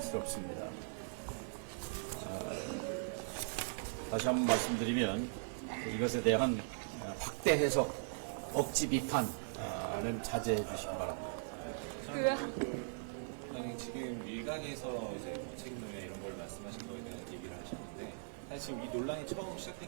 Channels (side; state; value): left; silent; digital silence